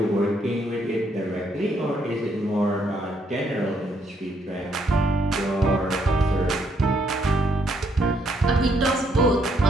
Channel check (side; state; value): both; normal; correlation 0.72